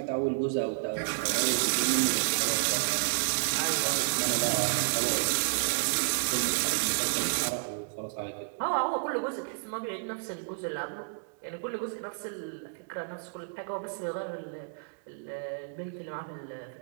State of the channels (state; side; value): silent; left; digital silence